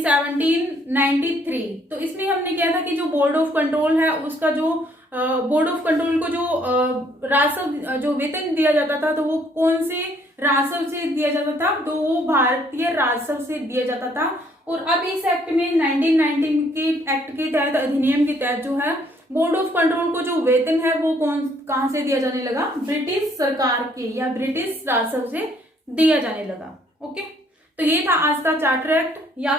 तो इसमें हमने किया था कि जो बोर्ड ऑफ कंट्रोल है उसका जो बोर्ड ऑफ कंट्रोल को जो राजस्व जो वेतन दिया जाता था तो वो कौन से राजस्व से दिया जाता था, तो वो भारतीय राजस्व से दिया जाता था। और अब इस एक्ट में 1919 के एक्ट के तहत, अधिनियम के तहत जो है बोर्ड ऑफ कंट्रोल को जो वेतन है वो कहां से दिया जाने लगा, ब्रिटिश सरकार के या ब्रिटिश राजस्व से दिया जाने लगा। ओके, तो ये था आज का चार्टर एक्ट या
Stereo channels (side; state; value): both; normal; correlation 0.65